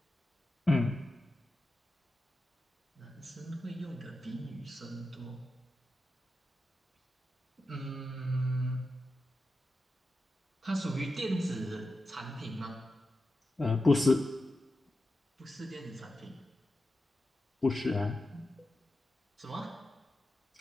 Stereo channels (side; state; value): both; normal; correlation 0.90